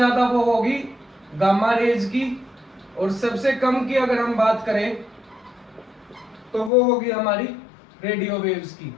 वो होगी गामा रेज की, और सबसे कम की अगर हम बात करें तो वो होगी हमारी रेडियो वेव्स की।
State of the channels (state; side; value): drops out; right; at 6.7 s